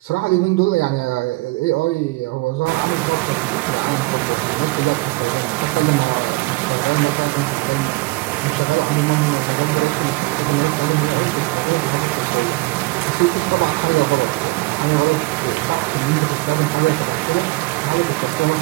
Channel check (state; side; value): quieter; left; 22.9 dB